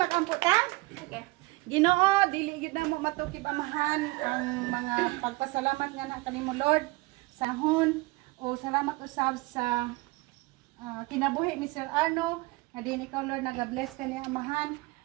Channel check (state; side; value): quieter; left; 23.1 dB